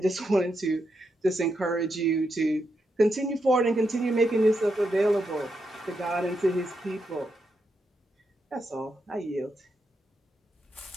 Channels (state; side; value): normal; both; correlation 0.83